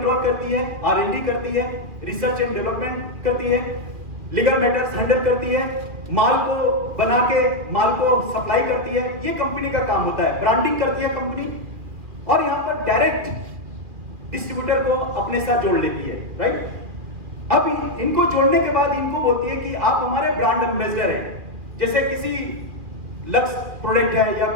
करती है, R&D करती है, रिसर्च एंड डेवलपमेंट करती है, लीगल मैटर्स हैंडल करती है, माल को बना के माल को सप्लाई करती है। ये कंपनी का काम होता है। ब्रांडिंग करती है कंपनी, और यहाँ पर डायरेक्ट डिस्ट्रीब्यूटर को अपने साथ जोड़ लेती है, राइट। अब इनको जोड़ने के बाद इनको बोलती है कि आप हमारे ब्रांड एम्बेसडर हैं। जैसे किसी लक्स प्रोडक्ट है या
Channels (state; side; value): late; left; 2.4 ms